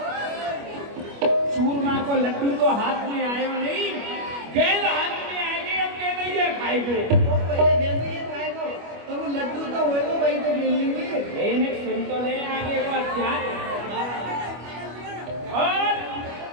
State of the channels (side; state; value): left; late; 25 ms